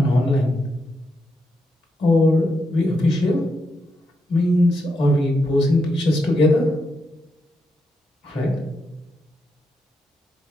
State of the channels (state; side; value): normal; both; correlation 0.83